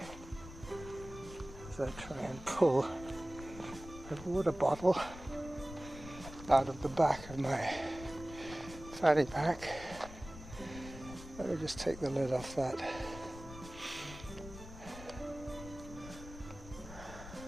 as I try and pull a water bottle out of the back of my fanny pack. Let me just take the lid off that.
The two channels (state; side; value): noise; left; rumble, 14 dB below the sound